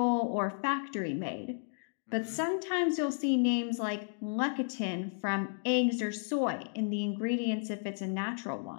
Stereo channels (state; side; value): silent; right; digital silence